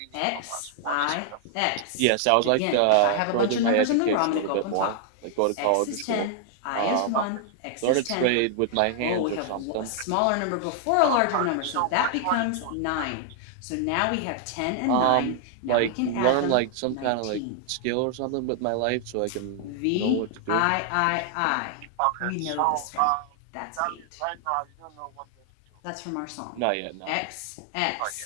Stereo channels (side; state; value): both; different; correlation -0.01